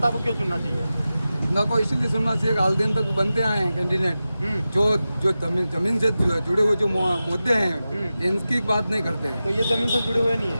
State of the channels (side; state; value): both; inverted; correlation -0.94